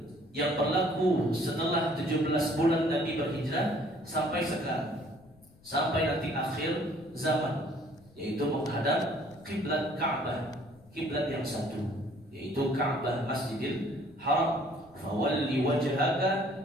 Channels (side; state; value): left; noise; rumble, 26 dB below the sound